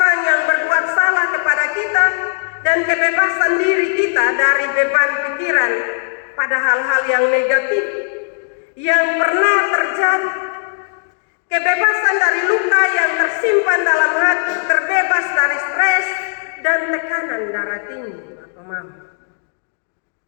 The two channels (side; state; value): right; silent; 61 dB below the other